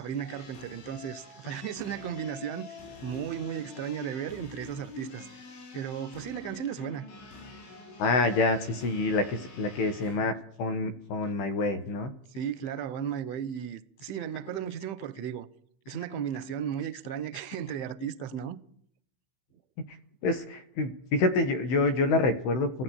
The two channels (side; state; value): right; late; 15 ms